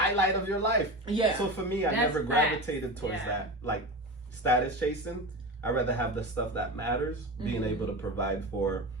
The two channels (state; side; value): normal; both; correlation 0.26